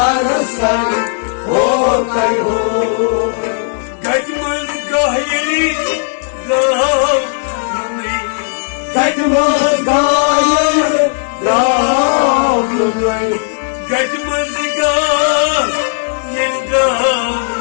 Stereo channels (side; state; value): right; silent; digital silence